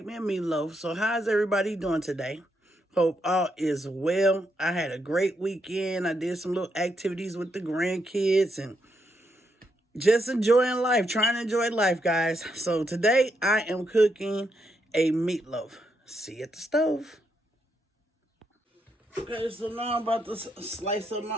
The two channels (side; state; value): both; normal; correlation 0.79